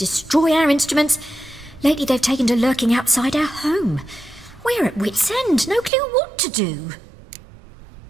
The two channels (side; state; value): left; drops out; at 5.9 s